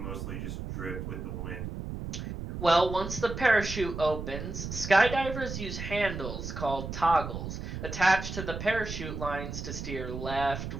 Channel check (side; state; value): right; noise; rumble, 6 dB below the sound